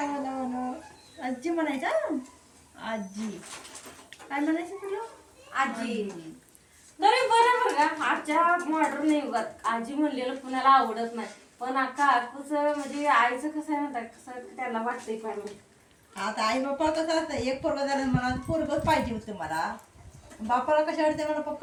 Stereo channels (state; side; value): identical; both; correlation 1.00